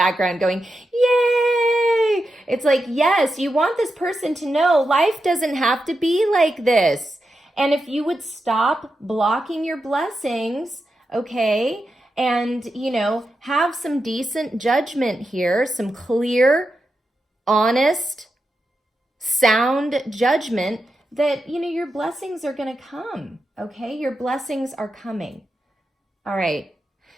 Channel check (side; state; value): both; normal; correlation 0.88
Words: going, yay! It's like, yes, you want this person to know life doesn't have to be like this. And if you would stop blocking your blessings, okay, and, have some decent judgment here, some clear, honest, sound judgment that, your blessings are going to come, okay? Your blessings are coming. All right.